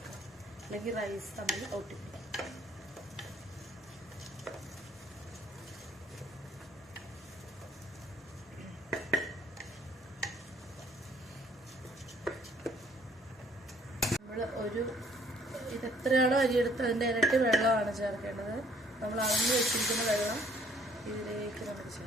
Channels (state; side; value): normal; both; correlation 0.61